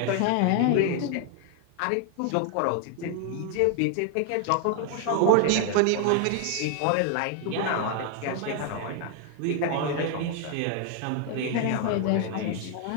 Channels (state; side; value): different; both; correlation 0.00